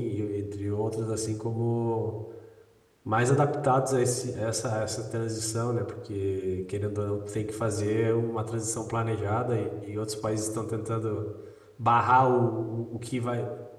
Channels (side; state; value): both; identical; correlation 1.00